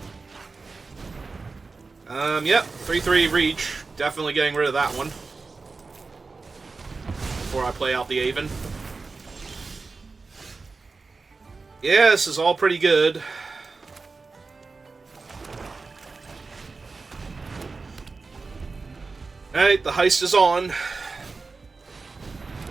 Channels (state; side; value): quieter; left; 4.1 dB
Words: Yep. 3/3 reach. Definitely getting rid of that one. Before I play out the Aven. Yeah, this is all pretty good. Alright, the heist is on.